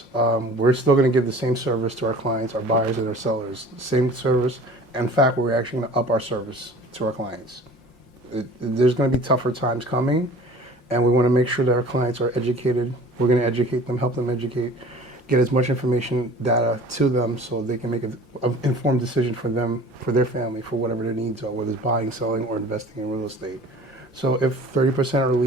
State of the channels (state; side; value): normal; both; correlation 0.45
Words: We're still going to give the same service to our clients, our buyers and our sellers. Same service. In fact, we're actually going to up our service to our clients. There's going to be tougher times coming, and we want to make sure that our clients are educated. We're going to educate them, help them educate, get as much information, data to them so they can make an informed decision for them, for their family, for whatever their needs are, whether it's buying, selling, or investing in real estate. So if 30% are